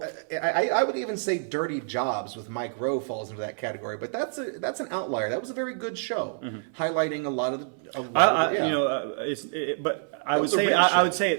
I would even say Dirty Jobs with Mike Rowe falls into that category, but that's an outlier. That was a very good show, highlighting a lot of the. But I was would a say real I show. would say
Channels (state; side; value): silent; left; 59 dB below the other